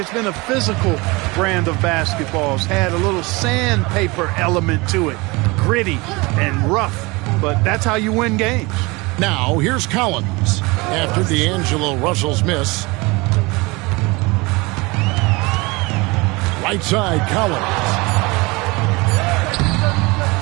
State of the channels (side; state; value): left; quieter; 24.8 dB